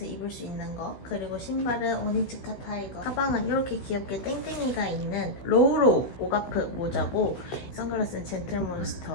입을 수 있는 거 그리고 신발은 오니츠카 타이거 가방은 이렇게 귀엽게 땡땡이가 있는 로우로우 오가프 모자고 선글라스는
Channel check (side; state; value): right; late; 16 ms